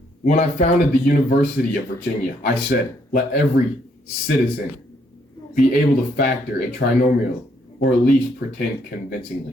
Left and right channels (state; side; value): normal; both; correlation 0.71